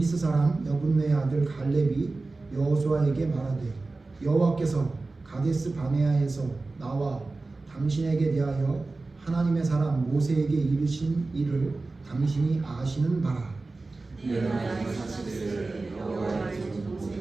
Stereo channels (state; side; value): quieter; left; 3.5 dB